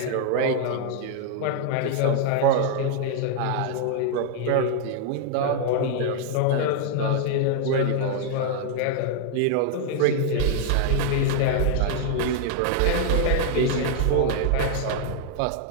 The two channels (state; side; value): different; both; correlation 0.00